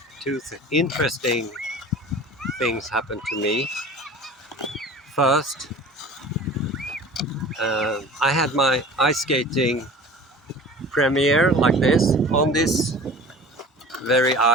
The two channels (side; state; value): both; normal; correlation 0.41